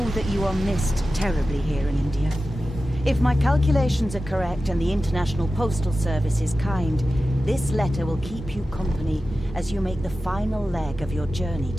that you are missed terribly here in India. If my calculations are correct and the International Postal Service is kind, this letter will keep you company as you make the final leg of your journey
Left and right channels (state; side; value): normal; both; correlation 0.94